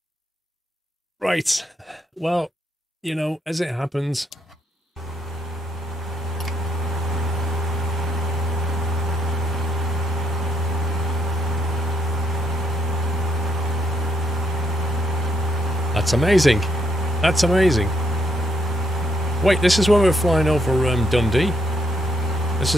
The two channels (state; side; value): normal; both; correlation 0.75